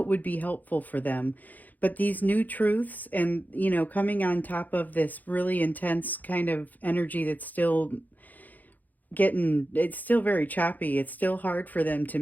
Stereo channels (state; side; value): late; right; 0.082 ms